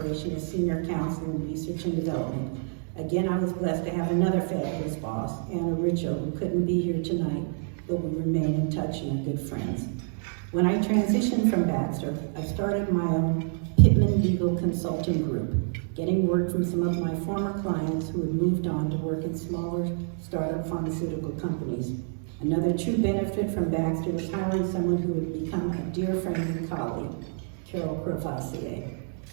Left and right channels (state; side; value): silent; left; 60 dB below the other